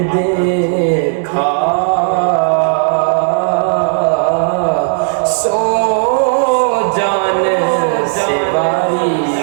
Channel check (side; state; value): left; silent; digital silence